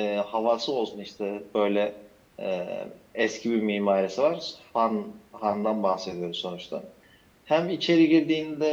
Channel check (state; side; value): identical; both; correlation 1.00